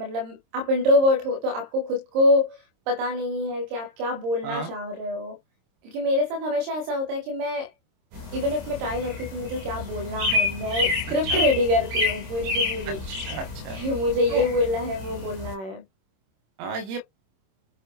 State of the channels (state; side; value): late; left; 26 ms